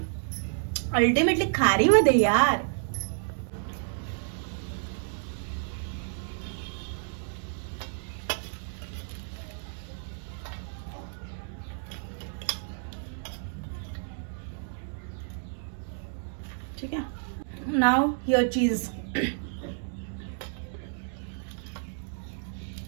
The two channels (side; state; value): left; silent; digital silence